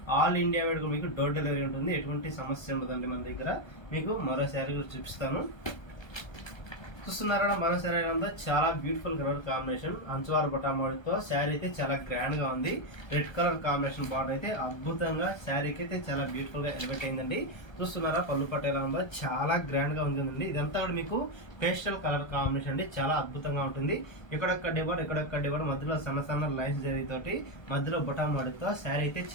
ఆల్ ఇండియా వైడ్ మీకు డోర్ డెలివరీ ఉంటుంది, ఎటువంటి సమస్య ఉండదండి మన దగ్గర. మీకు మరో శారీ కూడా చూపిస్తాను. చూస్తున్నారా మరో శారీ ఎలా ఉందో, చాలా బ్యూటిఫుల్ కలర్ కాంబినేషన్, అంచువారు బొటామోడితో శారీ అయితే చాలా గ్రాండ్ గా ఉంది. రెడ్ కలర్ కాంబినేషన్ బార్డర్ అయితే అద్భుతంగా శారీకి అయితే చాలా బ్యూటిఫుల్ గా ఎలివేట్ అయిందండి. చూస్తున్నారా పళ్ళు పట్టు ఎలా ఉందో, చాలా గ్రాండ్ గా ఉంటుందండి. ఇదంతా కూడా మీకు పేస్టల్ కలర్ కాంబినేషన్ అండి, చాలా అద్భుతంగా ఉంటుంది. ఇక్కడొక్క డిబార్, మధ్యలో సన్న లైన్స్ జరిగితోటి, మధ్యలో బొటామోడితో శారీ అయితే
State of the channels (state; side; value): late; right; 1.3 ms